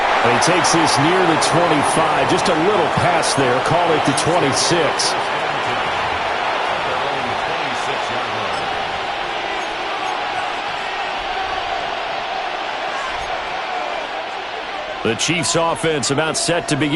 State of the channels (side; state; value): both; identical; correlation 1.00